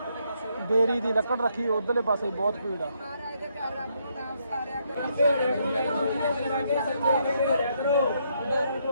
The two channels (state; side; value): inverted; both; correlation -0.74